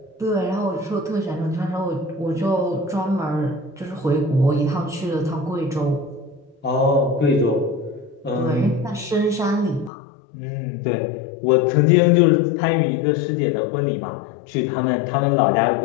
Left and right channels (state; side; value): drops out; right; at 9.9 s